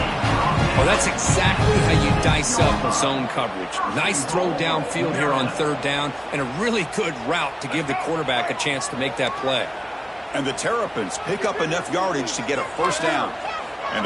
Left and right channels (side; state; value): both; identical; correlation 1.00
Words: Well, that's exactly how you dice up a zone coverage. Nice throw downfield here on 3rd down, and a really good route to give the quarterback a chance to make that play. And the Terrapins pick up enough yardage to get a 1st down. And